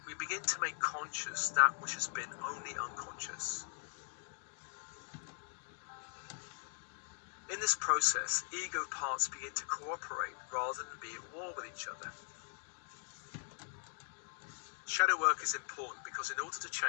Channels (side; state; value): right; silent; 51 dB below the other